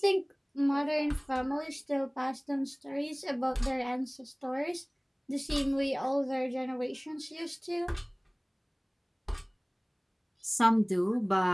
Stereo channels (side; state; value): both; identical; correlation 1.00